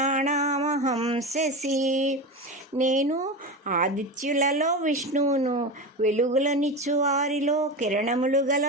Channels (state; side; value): normal; both; correlation 0.22